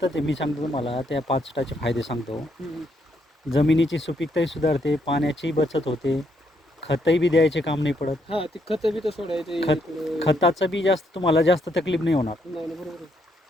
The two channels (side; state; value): both; normal; correlation 0.75